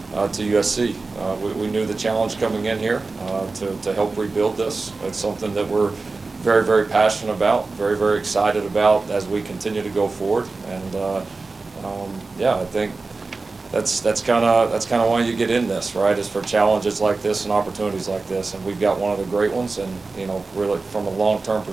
to USC. We knew the challenge coming in here to help rebuild this. It's something that we're very, very passionate about, very, very excited about as we continue to go forward. And I think that's kind of why you get in this, right? Is for challenges like this and opportunities like this, and we've got one of the great ones. And really from a long-term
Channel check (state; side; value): quieter; left; 3.8 dB